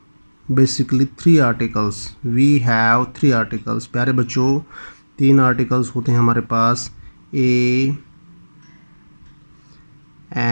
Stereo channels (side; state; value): both; inverted; correlation -1.00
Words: basically 3 articles. We have 3 articles. प्यारे बच्चों, 3 आर्टिकल्स होते हैं हमारे पास. A,